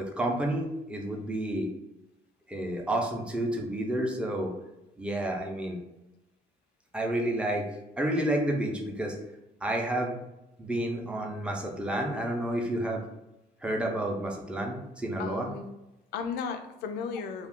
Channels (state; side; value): normal; both; correlation 0.66